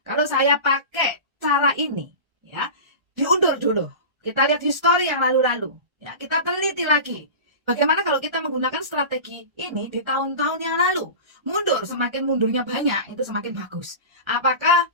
Kalau saya pakai cara ini, ya, diundur dulu. Kita lihat histori yang lalu-lalu, ya, kita teliti lagi. Bagaimana kalau kita menggunakan strategi ini di tahun-tahun yang lalu? Mundur, semakin mundurnya banyak, itu semakin bagus. Apakah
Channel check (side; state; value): left; late; 1.3 ms